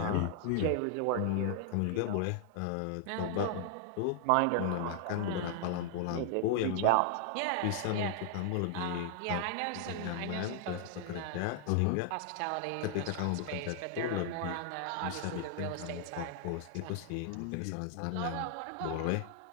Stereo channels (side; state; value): both; different; correlation 0.00